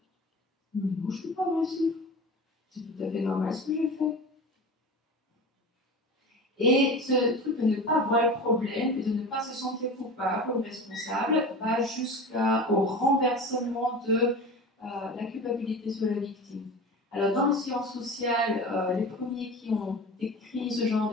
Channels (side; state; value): both; normal; correlation 0.32